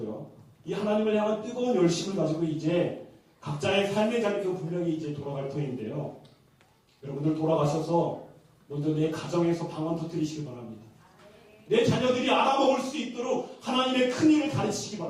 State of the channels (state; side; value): identical; both; correlation 1.00